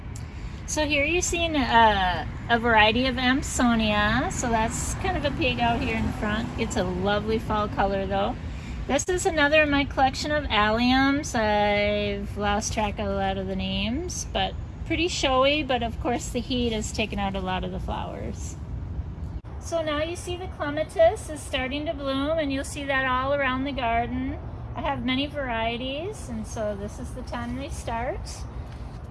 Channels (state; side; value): identical; both; correlation 1.00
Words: So here you're seeing a variety of Amsonia. So that's kind of a pig out here in front. It's a lovely fall color though. This is another in my collection of alliums. I've lost track of a lot of the names, but pretty showy, but of course the heat has taken out a lot of the flowers. So now you see the Clematis is starting to bloom, and you'll see that all around the garden. I have many varieties, and so this is the time they start.